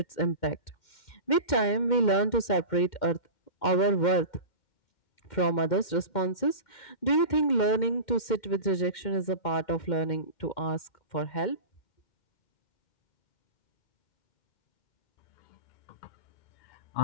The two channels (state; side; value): late; right; 2.1 ms